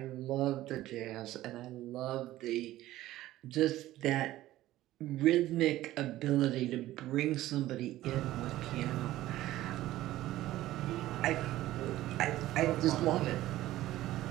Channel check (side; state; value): left; quieter; 15.3 dB